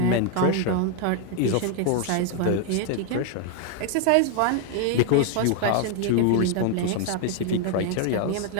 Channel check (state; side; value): different; both; correlation 0.00